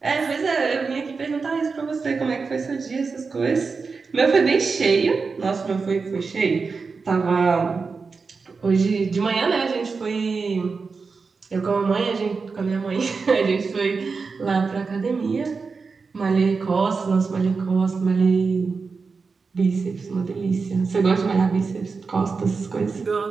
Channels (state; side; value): quieter; left; 4.7 dB